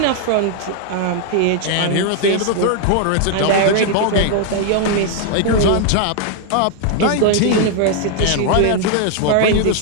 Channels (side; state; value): both; different; correlation 0.00